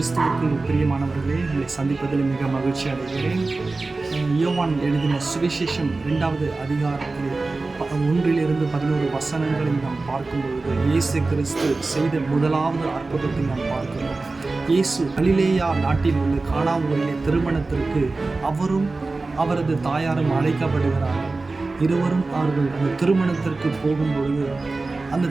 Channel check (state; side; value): quieter; left; 3.5 dB